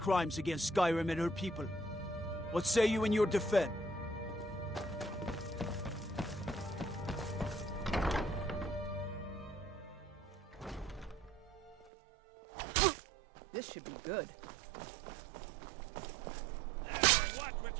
against Skyrim and her people. What say you in your defense? This should be good. Watch what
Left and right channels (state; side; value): drops out; left; at 11.9 s